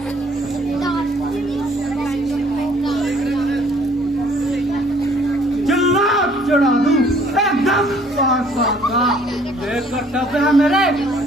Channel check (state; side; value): normal; both; correlation 0.59